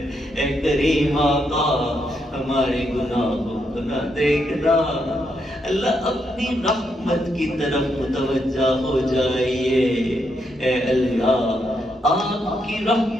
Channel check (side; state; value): both; normal; correlation 0.79